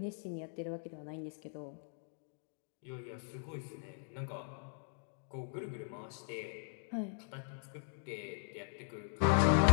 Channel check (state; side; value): silent; right; digital silence